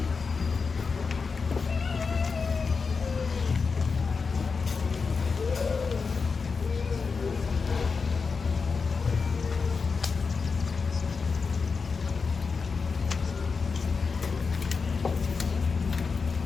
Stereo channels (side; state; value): right; quieter; 5.0 dB